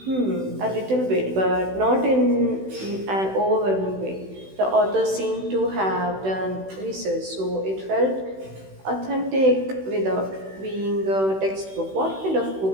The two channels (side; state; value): left; late; 16 ms